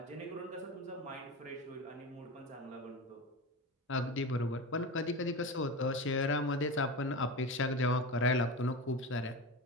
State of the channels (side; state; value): both; normal; correlation 0.25